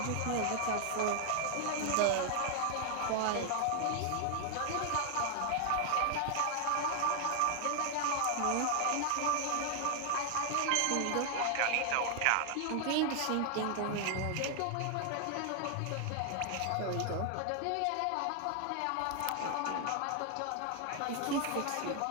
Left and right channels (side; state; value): both; different; correlation 0.00